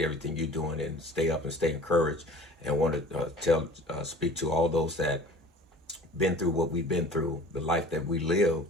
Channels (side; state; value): both; normal; correlation 0.45